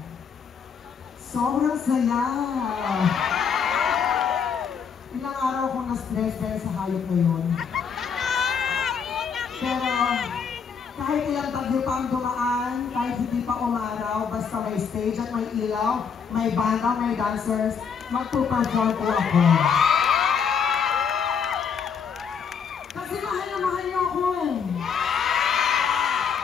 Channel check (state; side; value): quieter; right; 6.6 dB